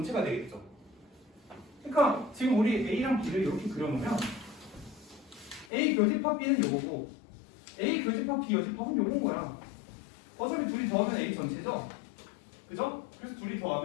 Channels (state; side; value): drops out; right; at 5.7 s